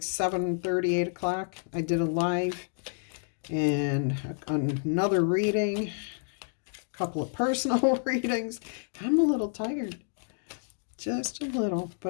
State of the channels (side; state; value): right; silent; digital silence